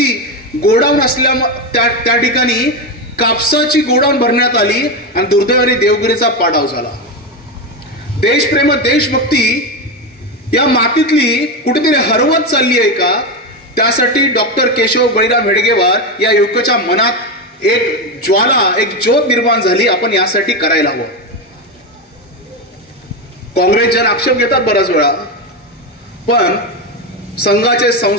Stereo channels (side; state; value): both; normal; correlation 0.13